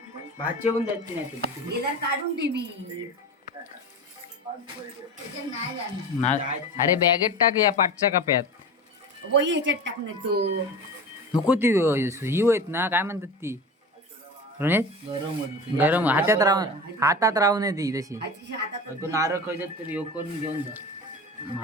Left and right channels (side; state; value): both; normal; correlation 0.31